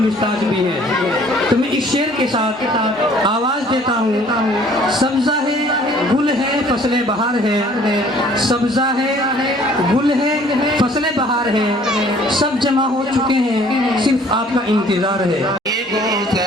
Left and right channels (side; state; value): both; normal; correlation 0.56